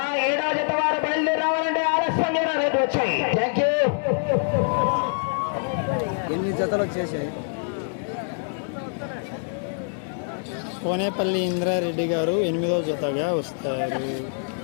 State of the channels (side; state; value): right; silent; digital silence